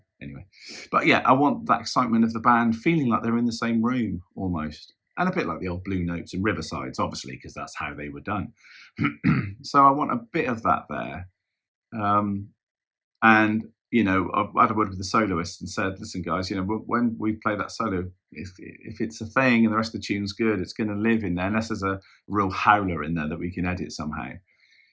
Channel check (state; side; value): identical; both; correlation 1.00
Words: anyway. But yeah, I want that excitement of the band feeling like they're in the same room almost. and a bit like the old Blue Notes and Riversides, obviously, because that's how they were done. So I want a bit of that there. Um, and I had a word with the soloist and said, listen, guys, when we play that solo, if it's a thing and the rest of the tune's good, it's going to live in there, unless there's a real howler in there that we can edit somehow.